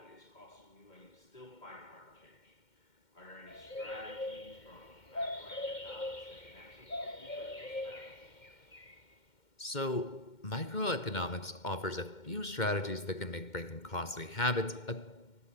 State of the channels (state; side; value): late; right; 2.1 ms